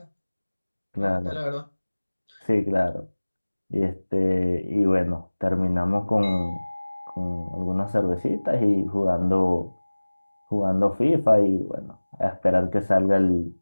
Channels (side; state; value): both; inverted; correlation -1.00